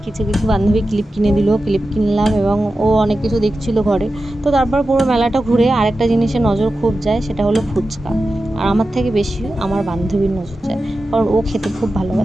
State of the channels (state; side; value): normal; both; correlation 0.92